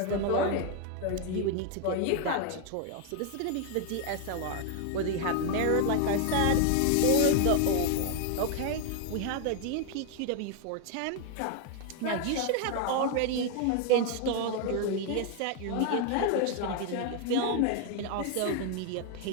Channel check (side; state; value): both; different; correlation 0.01